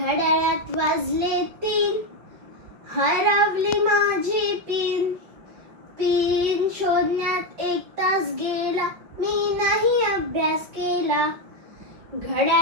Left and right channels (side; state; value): left; late; 5.5 ms